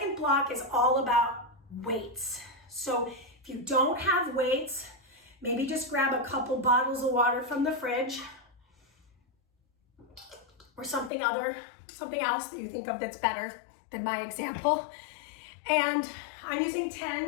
block is all about weights. So if you don't have weights, maybe just grab a couple bottles of water from the fridge or something else that you think of that's better than my example. And I'm using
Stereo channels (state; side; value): drops out; right; at 11.1 s